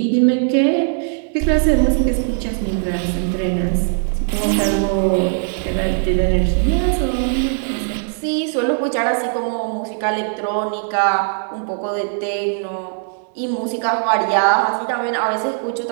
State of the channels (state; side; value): silent; left; 66 dB below the other